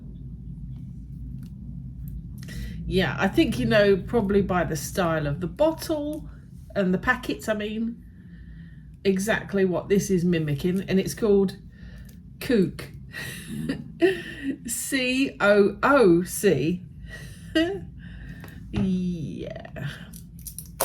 Yeah, I think you know probably by the style of the bottle and the packets, I mean, exactly what this is mimicking, and it's called CooC. COOC. Yeah.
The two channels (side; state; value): both; identical; correlation 1.00